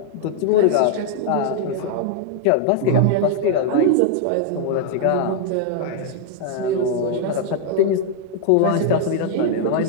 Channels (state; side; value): different; both; correlation 0.00